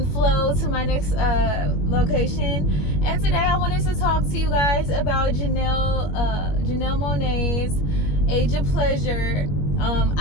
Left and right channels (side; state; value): right; late; 21 ms